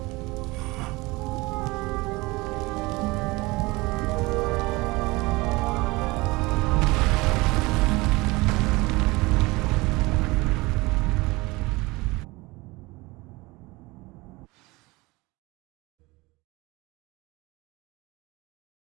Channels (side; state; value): left; quieter; 22.7 dB